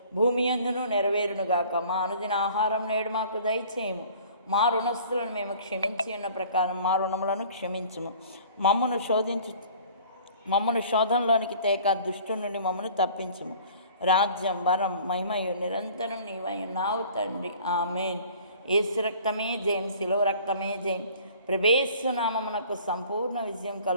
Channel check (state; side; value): inverted; both; correlation -0.49